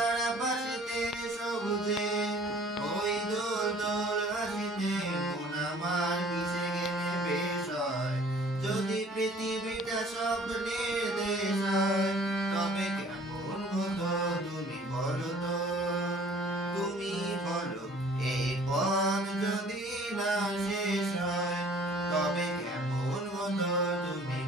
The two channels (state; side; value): normal; both; correlation 0.52